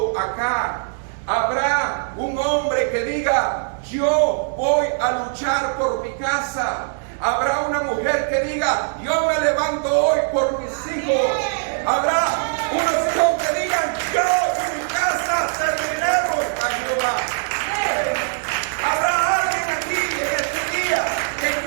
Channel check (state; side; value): silent; left; 65 dB below the other